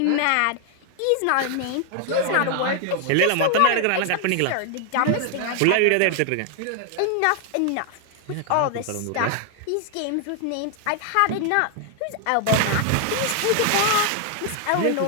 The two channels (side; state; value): both; different; correlation 0.00